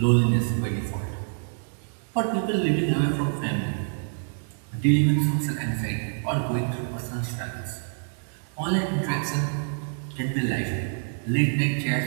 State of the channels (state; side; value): silent; left; 61 dB below the other